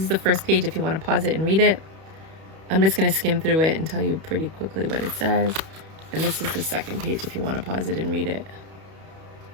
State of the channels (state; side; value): late; left; 31 ms